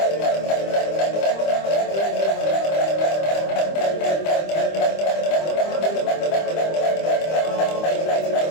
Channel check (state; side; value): late; right; 25 ms